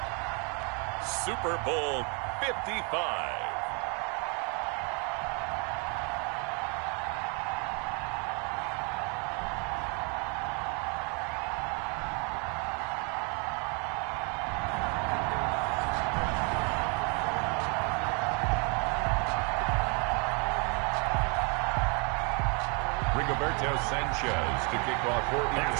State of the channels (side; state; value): left; quieter; 34.8 dB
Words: Super Bowl 55. Sanchez to kick off for